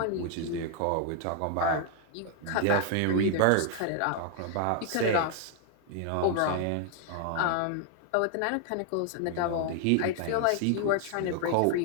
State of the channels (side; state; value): both; different; correlation 0.00